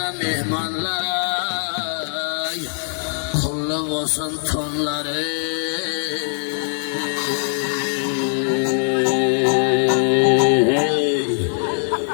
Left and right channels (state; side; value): silent; right; 56 dB below the other